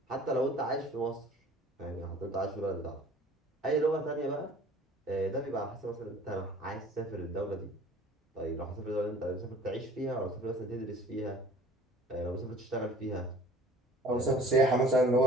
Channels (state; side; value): normal; both; correlation 0.49